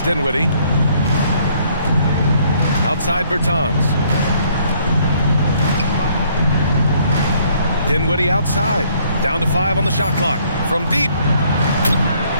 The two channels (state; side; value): inverted; both; correlation -0.64